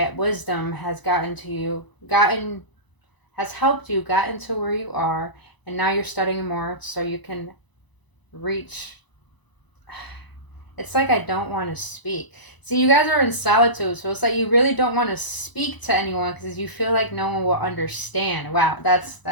wisdom has helped you, gotten to where you are, and now you're studying more so you can reach. It's like I don't want to speak. See, you guys are in solitude, so it's like you really don't want to speak to anyone because you feel like no one will understand. Wow,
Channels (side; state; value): right; late; 1.0 ms